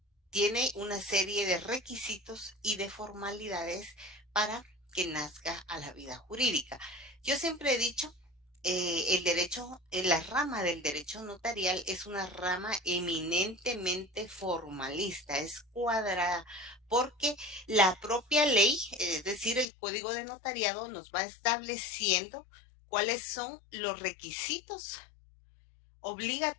tiene una serie de requisitos y de formalidades para que nazca a la vida jurídica. Yo siempre he dicho, el derecho, la rama del derecho notarial es una rama eminentemente formalista, es cuadrada, porque la propia ley, es decir, el Código de Notariado, nos va estableciendo cuáles son los requisitos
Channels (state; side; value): drops out; right; at 19.7 s